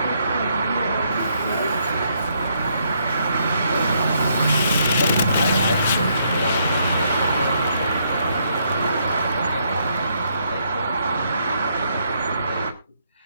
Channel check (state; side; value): inverted; both; correlation -0.73